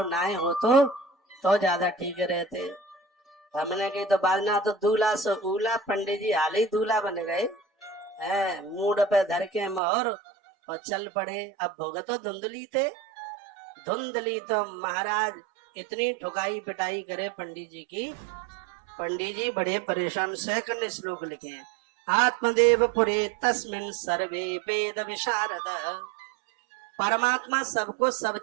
ना हो तो ज्यादा ठीक रहते। हमने की तो बाजना तो दूल्हा सो उला, पंडित जी हाल ही दूल्हा बन गए। मूड पे धर के मोहर और चल पड़े। अब भोग तो धुंधली थे। धुंधली तो महाराज इतनी ठुकाई पिटाई करे पंडित जी की। पंडित जी बड़े परेशान। सेकंड श्लोक लिखे हैं, आत्मदेव पुरे तस्मिन सर्वे वेद विशारद। परमात्मा सबको सब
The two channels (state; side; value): drops out; left; at 9.8 s